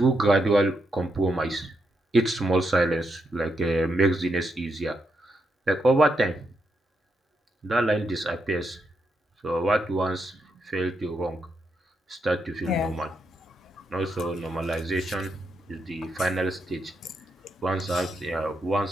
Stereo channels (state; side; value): normal; both; correlation 0.81